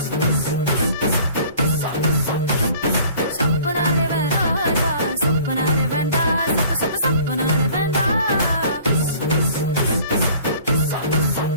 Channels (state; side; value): inverted; both; correlation -0.50